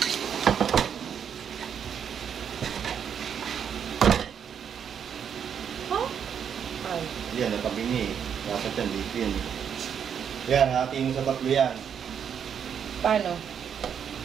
Huh? Ay. Yan, nakabingi eh. Dapat yan, dito yan. Yan, hatiin mo sa tatlo yan. Paano?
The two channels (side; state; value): left; quieter; 7.9 dB